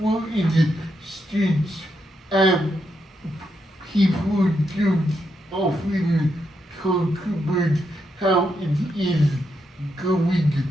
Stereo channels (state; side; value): normal; both; correlation 0.82